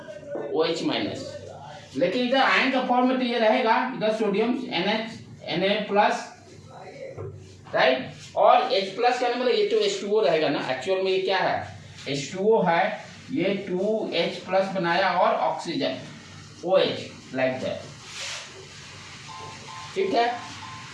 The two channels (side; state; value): both; identical; correlation 1.00